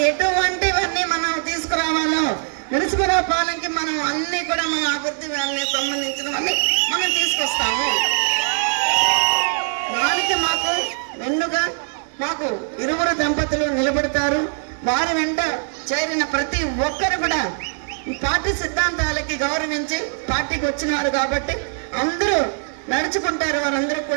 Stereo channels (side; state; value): left; silent; 55 dB below the other